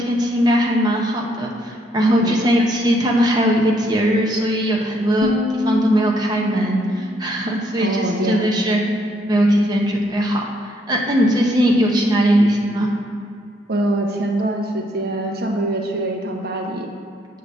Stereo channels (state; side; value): normal; both; correlation 0.71